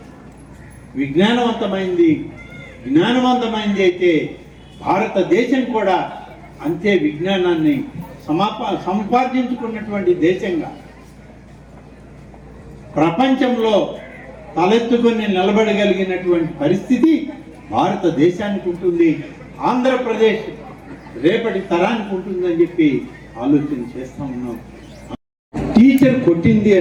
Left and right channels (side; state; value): both; identical; correlation 1.00